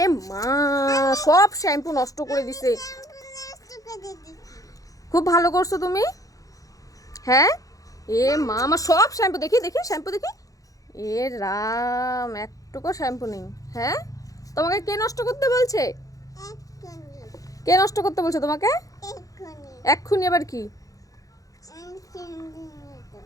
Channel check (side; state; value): right; late; 0.17 ms